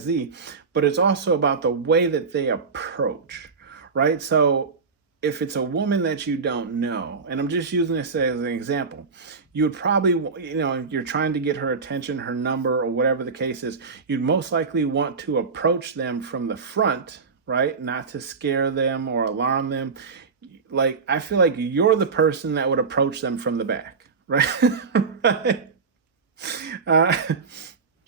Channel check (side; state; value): left; quieter; 5.0 dB